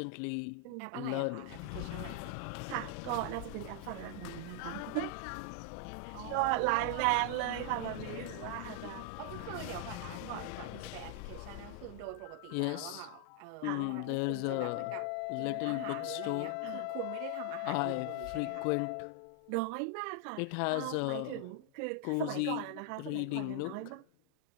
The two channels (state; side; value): different; both; correlation 0.00